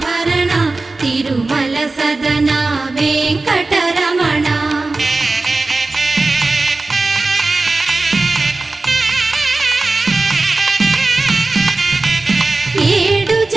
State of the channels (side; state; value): left; quieter; 3.4 dB